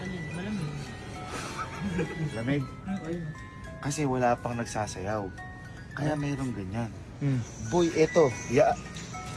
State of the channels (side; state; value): both; identical; correlation 1.00